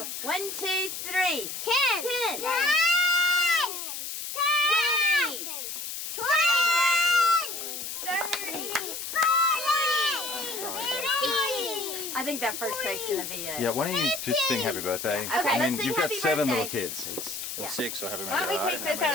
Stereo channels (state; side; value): noise; left; hiss, 6 dB below the sound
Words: 1, 2, 3. 10. 10. 10. I think that first take's gonna be it. Yeah, why don't you just sing happy birthday? Okay, I mean, let's sing you've got happy 7 birthday. little kids. It's Yeah. 6, so happy Why don't birthday. we take this out